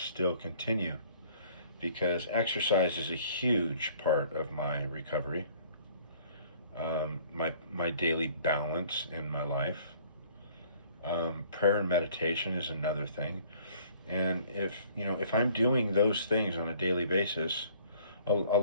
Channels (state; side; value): inverted; both; correlation -0.56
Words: continue. Because exercise is a huge part of my recovery, my daily balance in my life. Prayer and meditation is another thing. And if I'm doing those things on a daily basis,